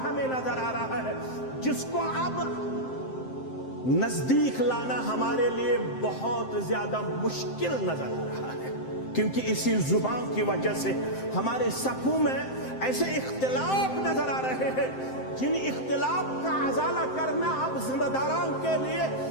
ہمیں نظر آ رہا ہے جس کو اب نزدیک لانا ہمارے لیے بہت زیادہ مشکل نظر آ رہا ہے، کیونکہ اسی زبان کی وجہ سے ہمارے صفوں میں ایسے اختلاف نظر آ رہے ہیں جن اختلاف کا ازالہ کرنا اب ذمہ داران کے لیے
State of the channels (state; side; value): late; right; 7.7 ms